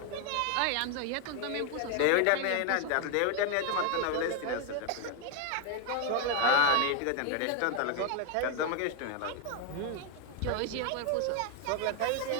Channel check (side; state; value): both; different; correlation 0.00